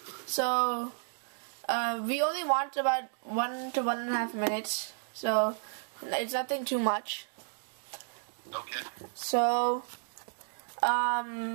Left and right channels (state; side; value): silent; left; digital silence